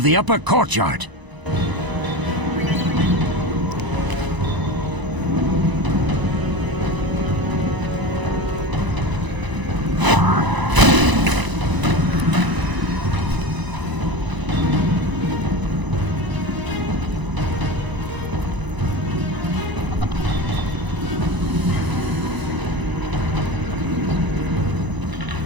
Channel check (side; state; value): left; late; 1.0 ms